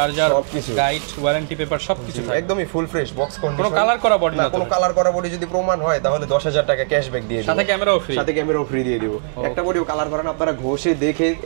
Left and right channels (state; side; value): silent; left; digital silence